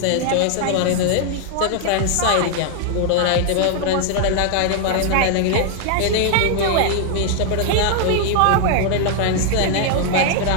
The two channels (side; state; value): both; different; correlation 0.00